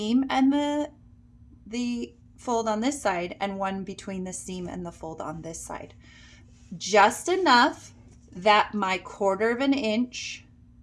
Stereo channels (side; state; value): both; identical; correlation 1.00